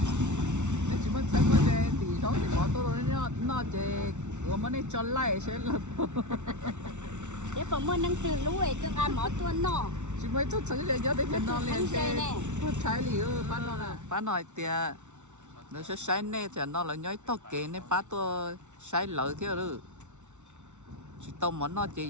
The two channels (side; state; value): left; late; 0.83 ms